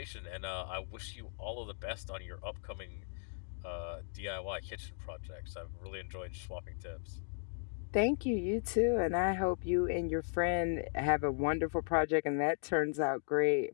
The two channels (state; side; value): silent; right; digital silence